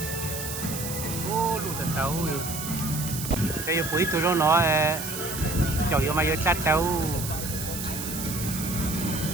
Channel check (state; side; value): noise; right; hiss, 6 dB below the sound